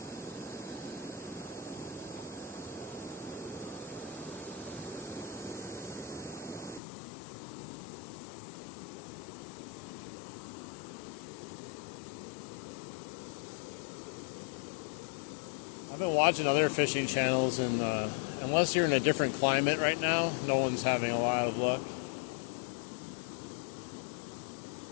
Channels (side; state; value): right; drops out; at 6.8 s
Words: I've been watching other fishing channels, and unless you're in a different climate right now, no one's having a lot of luck.